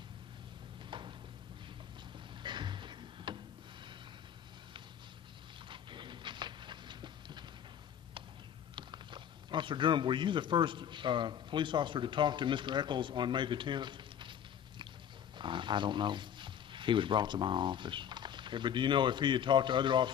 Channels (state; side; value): quieter; right; 9.3 dB